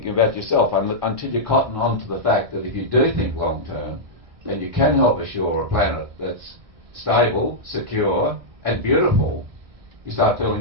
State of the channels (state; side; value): late; left; 1.6 ms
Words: about yourself until you cotton on to the fact that if you do think long term, then you can help assure a planet that's stable, secure and beautiful. You start